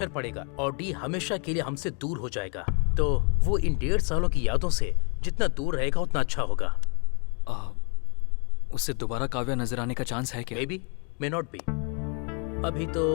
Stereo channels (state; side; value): quieter; right; 37.3 dB